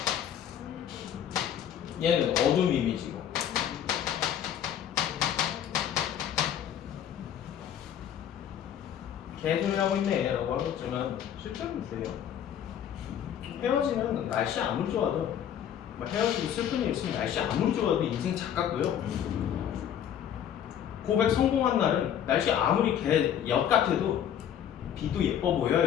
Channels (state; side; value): quieter; right; 9.6 dB